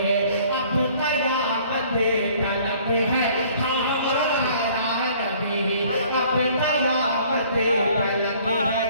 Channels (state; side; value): inverted; both; correlation -0.56